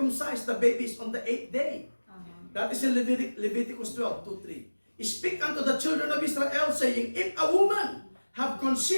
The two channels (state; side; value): inverted; both; correlation -1.00